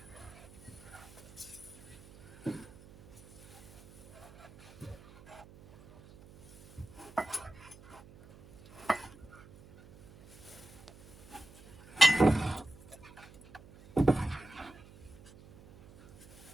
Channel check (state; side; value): noise; right; hum, 21 dB below the sound